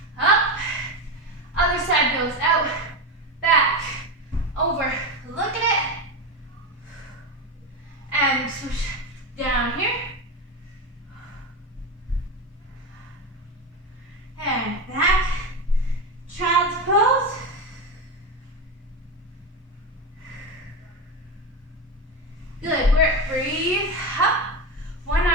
Up. Other side goes out, back, over. Look at it. And swoosh down here. And back. Child's pose. Good work. Breathe up. One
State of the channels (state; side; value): normal; both; correlation 0.17